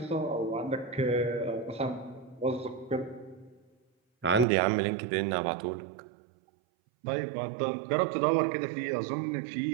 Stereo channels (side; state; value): left; drops out; at 4.5 s